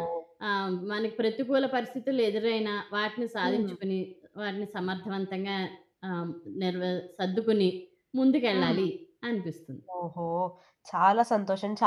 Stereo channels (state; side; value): identical; both; correlation 1.00